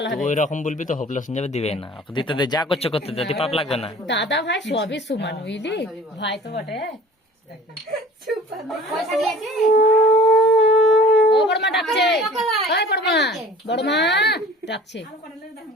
হবে। ওই রকম বলবি তো হোপলেস হয়ে যাবে, দিবে না। দিতে দে, যা করছে করতে দে, পাপ লাগবে না। দাদা ভাই সবই সমান, বুঝলি ভাই তো বটে। ও বড়মা ডাকছে, ওই বড়মা, বড়মা ডাকছে।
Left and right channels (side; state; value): both; normal; correlation 0.46